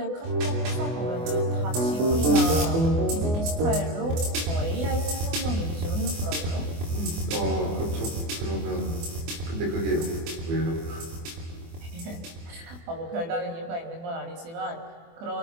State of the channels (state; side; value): late; left; 24 ms